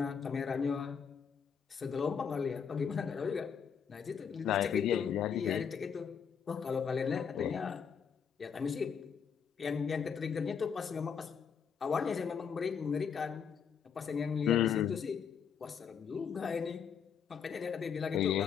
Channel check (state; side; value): quieter; right; 7.0 dB